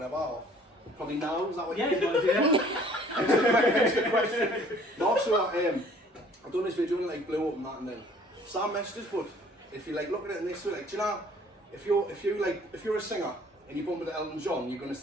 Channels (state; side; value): normal; both; correlation 0.55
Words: Or probably now, is that what Yeah, you want to do that? That's the question. No, so I've done this video and like blew up and that, and then Sam messaged us, but if you like look at it and this way, like, do you know, if you're a singer and you bump into Elton John, you're gonna